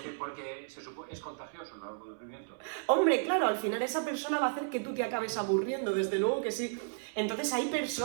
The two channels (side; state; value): left; silent; 56 dB below the other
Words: Porque se supone, es contagioso el aburrimiento. Hombre, claro, al final esa persona va a hacer que tú te acabes aburriendo, desde luego que sí. Entonces hay